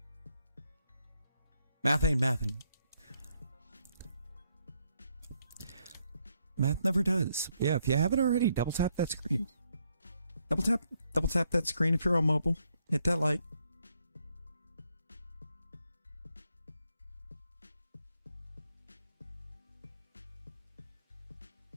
Math ain't mathin'. Math never does. Yeah, if you haven't already, double tap that screen. Double tap that screen if you're on mobile. Hit that like.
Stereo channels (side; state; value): both; inverted; correlation -0.75